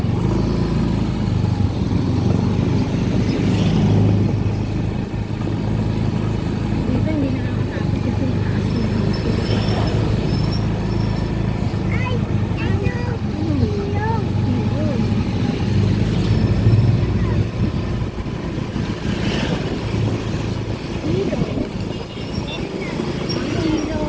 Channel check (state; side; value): identical; both; correlation 1.00